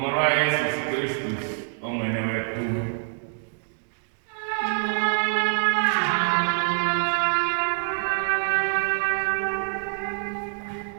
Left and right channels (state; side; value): silent; left; digital silence